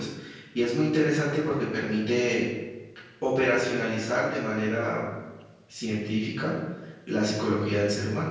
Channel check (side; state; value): both; identical; correlation 1.00